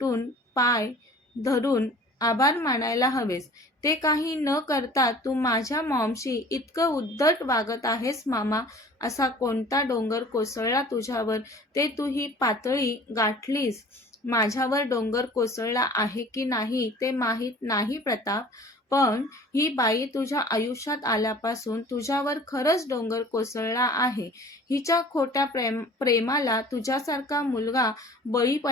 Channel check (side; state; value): both; normal; correlation 0.47